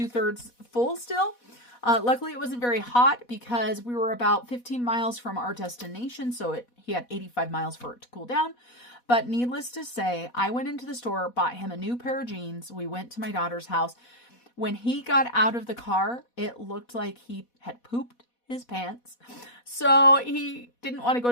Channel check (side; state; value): right; late; 4.1 ms